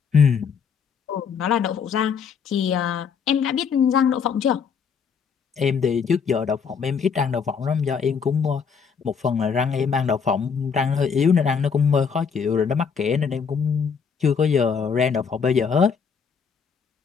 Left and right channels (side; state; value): right; quieter; 6.3 dB